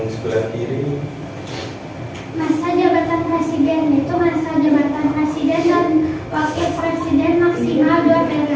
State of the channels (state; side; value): identical; both; correlation 1.00